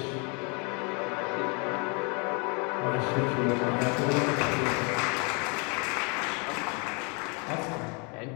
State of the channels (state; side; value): quieter; right; 33.4 dB